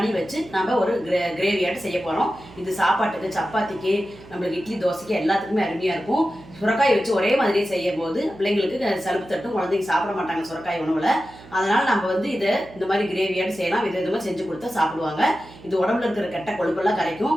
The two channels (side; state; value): right; noise; hum, 20 dB below the sound